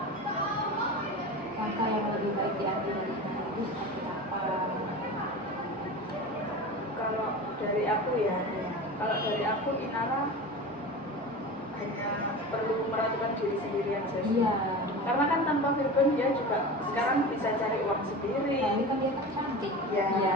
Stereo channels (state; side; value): normal; both; correlation 0.30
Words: Langkah yang lebih baik diambil dari sana itu seperti apa? Kalau dari aku ya, kalau dari aku Inara hanya perlu meratukan diri sendiri aja sih. Iya. Karena kan tanpa Virgon dia juga sekarang bisa cari uang sendiri. Tapi kan dia kan cantik. Ya, Iya.